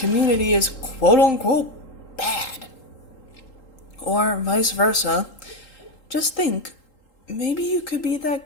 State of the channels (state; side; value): late; right; 3.8 ms